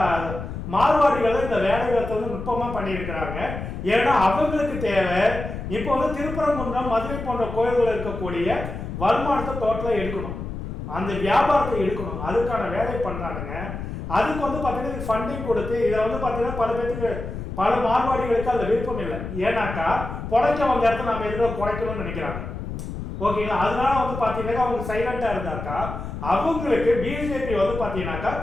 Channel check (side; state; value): left; noise; rumble, 7 dB below the sound